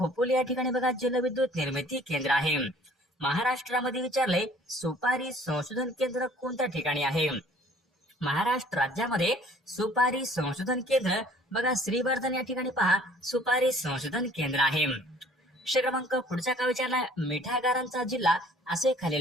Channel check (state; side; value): normal; both; correlation 0.54